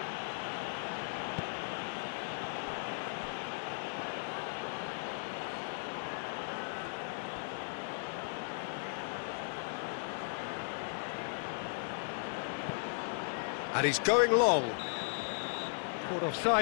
And he's going long. Caught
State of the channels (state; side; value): silent; right; digital silence